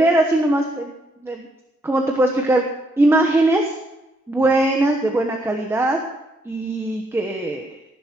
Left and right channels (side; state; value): both; normal; correlation 0.74